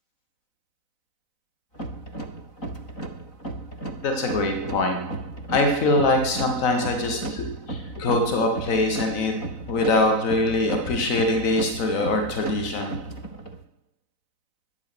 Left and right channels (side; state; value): right; late; 4.0 ms